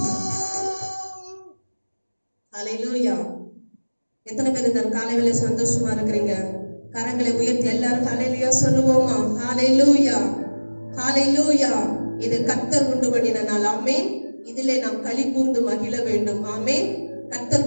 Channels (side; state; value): both; inverted; correlation -1.00